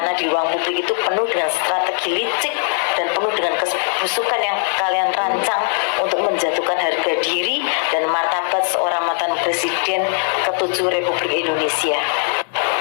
di ruang publik itu penuh dengan strategi licik dan penuh dengan kebusukan yang kalian rancang untuk menjatuhkan harga diri dan martabat seorang mantan presiden ke-7 Republik Indonesia.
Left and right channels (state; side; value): silent; right; 59 dB below the other